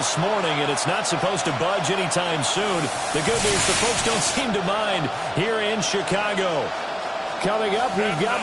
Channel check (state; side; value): identical; both; correlation 1.00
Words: morning, and it's not supposed to budge anytime soon. The good news, the folks don't seem to mind here in Chicago. Coming up, we've got